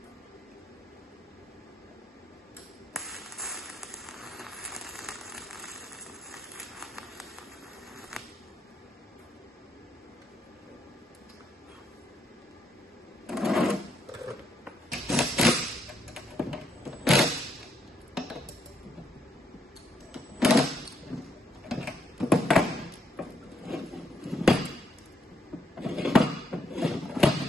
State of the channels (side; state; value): both; normal; correlation 0.74